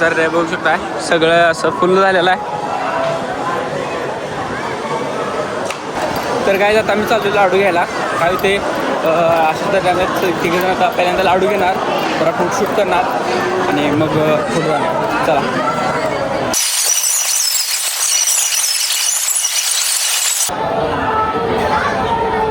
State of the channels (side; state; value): both; identical; correlation 1.00